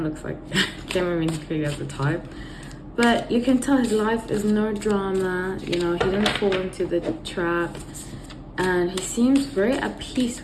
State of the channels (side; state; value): both; identical; correlation 1.00